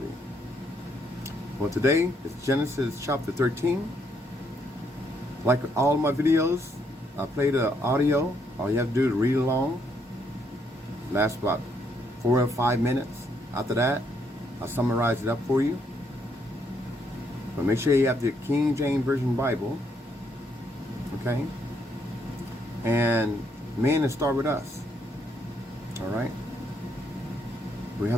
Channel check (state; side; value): normal; both; correlation 0.73